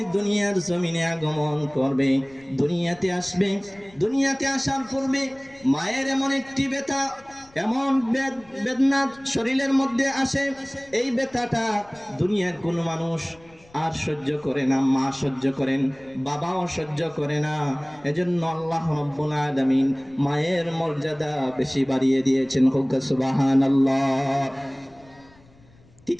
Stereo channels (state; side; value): noise; left; rumble, 27 dB below the sound